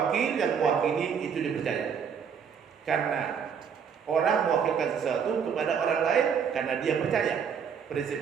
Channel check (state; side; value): quieter; left; 7.0 dB